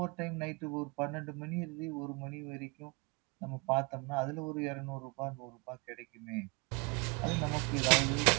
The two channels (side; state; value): left; quieter; 29.1 dB